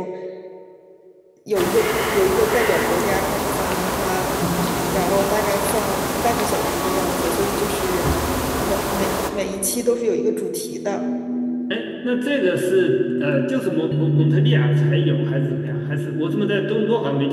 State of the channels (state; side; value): identical; both; correlation 1.00